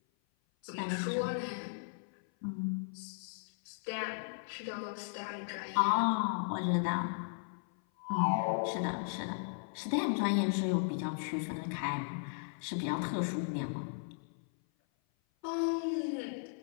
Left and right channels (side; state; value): right; silent; 54 dB below the other